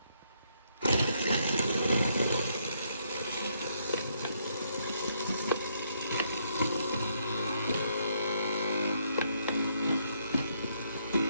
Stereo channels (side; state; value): both; inverted; correlation -0.73